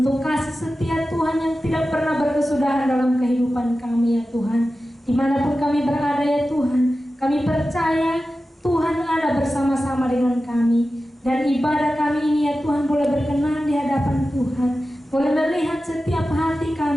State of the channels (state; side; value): normal; both; correlation 0.94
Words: kasih setia Tuhan yang tidak pernah berkesudahan dalam kehidupan kami ya Tuhan. Dimanapun kami berada ya Tuhan, kami percaya Tuhan ada bersama-sama dengan kami. Dan ibadah kami ini ya Tuhan boleh berkenan di hadapan Tuhan, boleh melihat setiap hati